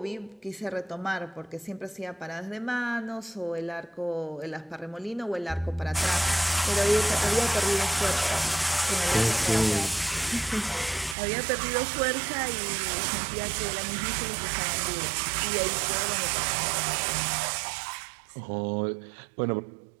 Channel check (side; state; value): left; drops out; at 11.2 s